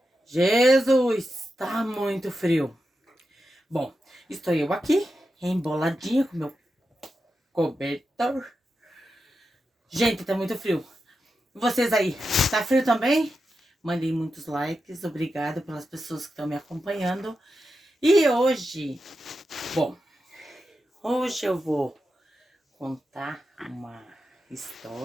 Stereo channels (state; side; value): normal; both; correlation 0.89